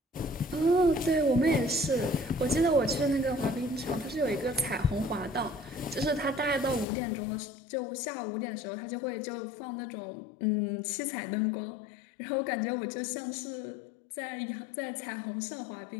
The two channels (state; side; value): drops out; right; at 6.9 s